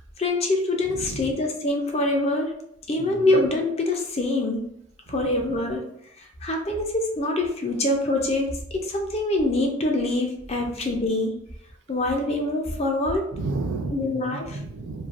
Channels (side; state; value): both; normal; correlation 0.45